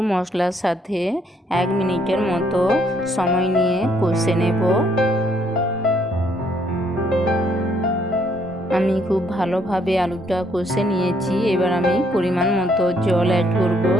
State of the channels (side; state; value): both; normal; correlation 0.68